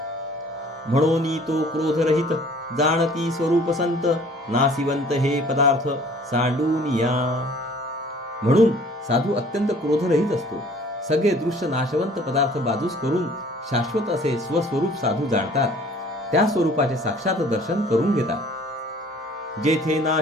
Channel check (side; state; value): both; normal; correlation 0.52